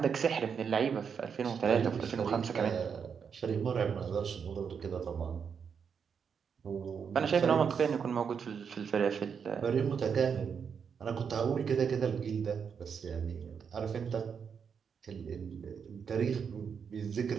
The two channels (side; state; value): left; quieter; 6.7 dB